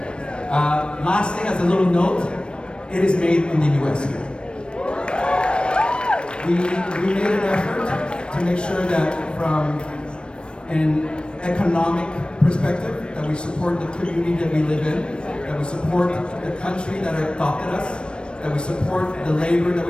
Last thing, as a little note, it is made in the US here. We made an effort to make sure that from an economic perspective, that we support the community that we live in, that we support the country that adopted us, that we support the labor that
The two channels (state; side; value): late; right; 0.056 ms